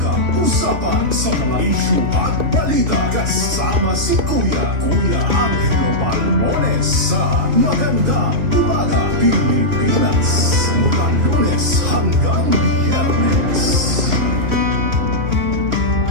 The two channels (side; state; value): left; late; 3.1 ms